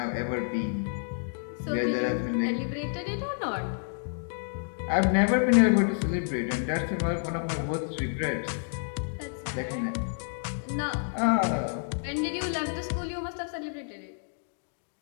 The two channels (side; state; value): right; silent; digital silence